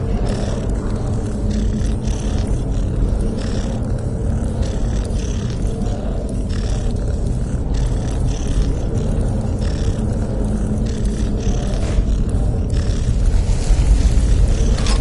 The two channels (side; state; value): both; identical; correlation 1.00